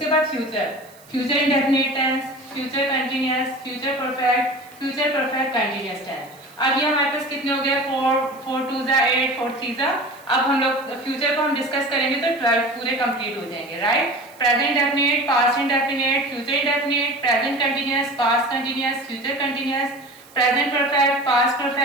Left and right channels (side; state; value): right; noise; hiss, 25 dB below the sound